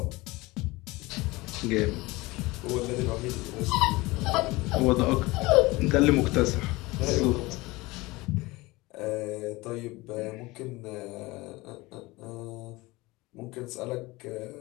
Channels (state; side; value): quieter; right; 21.7 dB